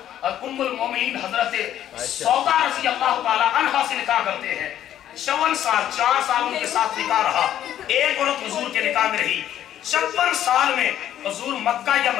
ام المومنین حضرت سودا رضی اللہ تعالی عنہا سے نکاح کرتے ہیں. 54 سال 4 سال ان کے ساتھ نکاح رہا, ایک عورت حضور کے نکاح میں رہی. 56 سال میں حضور مکہ یا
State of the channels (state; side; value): quieter; right; 11.3 dB